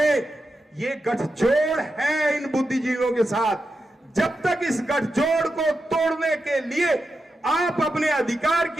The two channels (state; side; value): normal; both; correlation 0.88